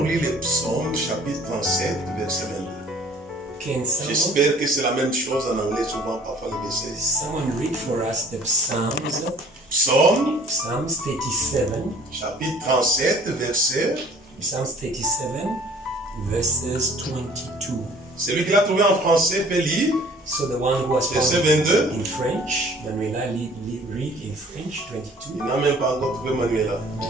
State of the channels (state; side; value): normal; both; correlation 0.52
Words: lire les psaumes, chapitre 37, verset 22? Can someone, J'espère que c'est la même chose en anglais, souvent, parfois le verset. someone read for us the Psalms? Psaume, Psalms 37. chapitre 37, verset. Psalms 37, verses 22. Celui qui l'a trouvé en français peut lire. So the one who was Verset found 22. in French, Manuela read in French 22. Il n'a même pas encore trouvé Manuela.